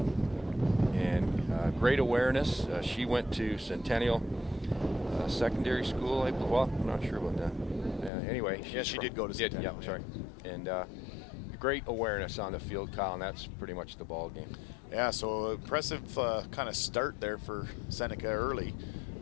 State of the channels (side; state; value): right; drops out; at 8.1 s